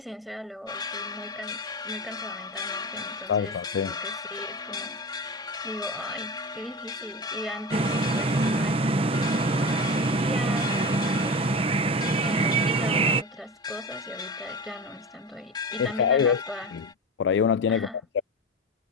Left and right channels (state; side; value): normal; both; correlation 0.26